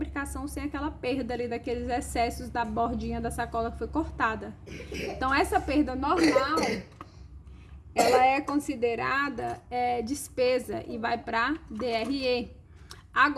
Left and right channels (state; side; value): identical; both; correlation 1.00